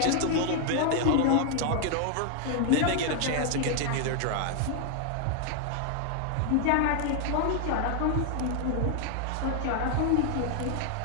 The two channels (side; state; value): both; different; correlation 0.00